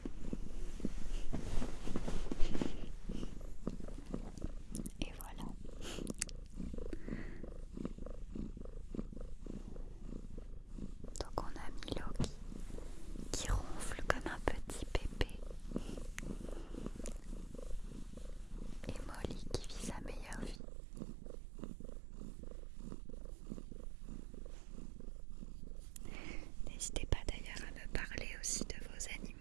Et voilà. Donc on a Milo qui ronfle comme un petit bébé. Et Molly qui vit sa meilleure vie. N'hésitez pas d'ailleurs à me parler aussi de vos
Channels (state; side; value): drops out; left; at 20.6 s